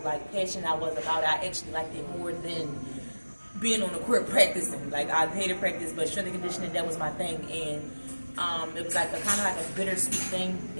like passionate I was about it. I actually liked it more than being on the court practicing. Like, I hated practice, but strength and conditioning, that was my thing. And it was like a kind of like a bittersweet thing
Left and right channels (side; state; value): both; inverted; correlation -1.00